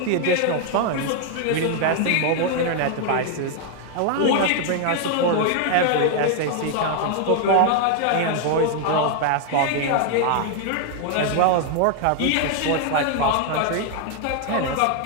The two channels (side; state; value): both; different; correlation 0.00